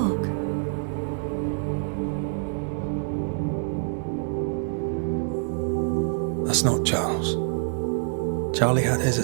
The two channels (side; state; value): left; silent; 60 dB below the other